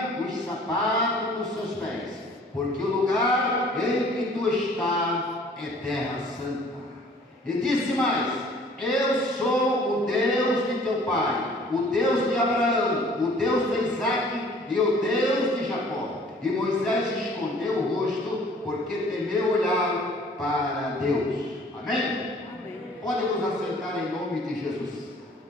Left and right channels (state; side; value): normal; both; correlation 0.53